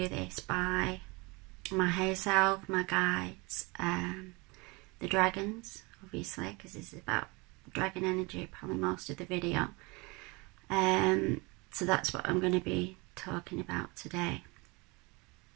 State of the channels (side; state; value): left; quieter; 26.5 dB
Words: this by my higher self, my guides, the dragons, obviously, because this is about dragon energy, probably most of the video. So that's what I'm going to be talking about today.